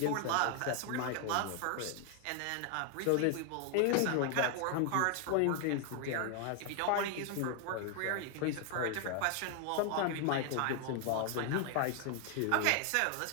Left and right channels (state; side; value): different; both; correlation 0.00